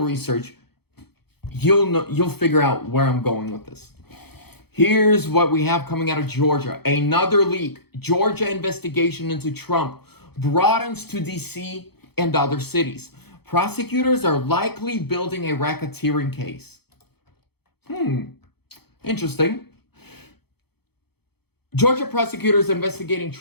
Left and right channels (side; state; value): right; late; 0.97 ms